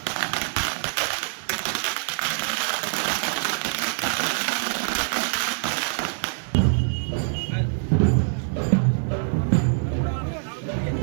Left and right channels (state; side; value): silent; left; digital silence